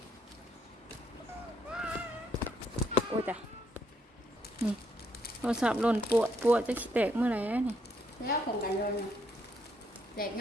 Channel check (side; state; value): both; normal; correlation 0.73